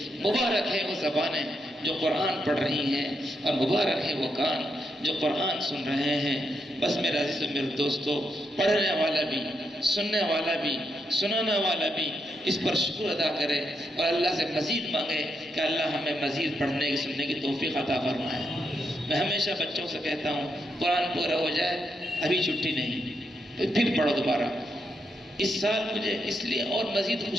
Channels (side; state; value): both; normal; correlation 0.81